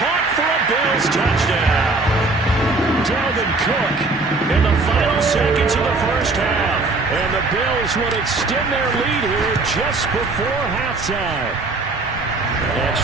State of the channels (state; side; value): quieter; left; 3.4 dB